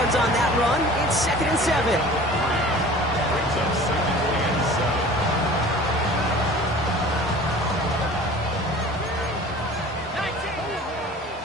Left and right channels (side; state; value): both; normal; correlation 0.43